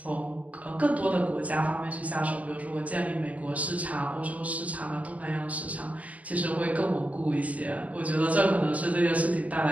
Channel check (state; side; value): late; left; 0.069 ms